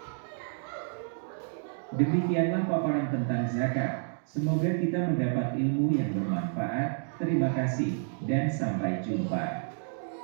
Demikianlah paparan tentang zakat. Semoga kita mendapat ilmu yang bermanfaat. Terima kasih dan sampai jumpa.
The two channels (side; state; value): left; silent; digital silence